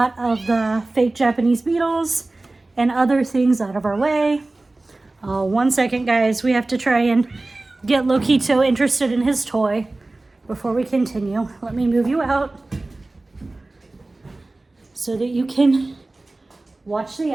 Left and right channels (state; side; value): quieter; left; 3.0 dB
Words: of the fake Japanese beetles and other things out of our way. 1 second, guys. We have to try and get Lokito interested in his toy before we continue. Let me move you out so that you can watch the